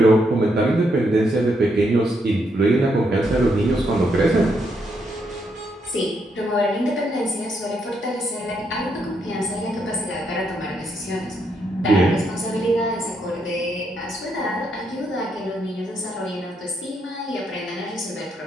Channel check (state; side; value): normal; both; correlation 0.77